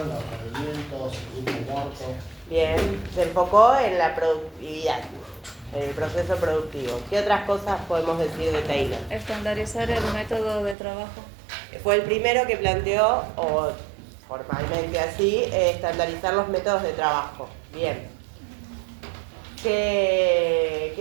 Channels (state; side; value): drops out; left; at 10.8 s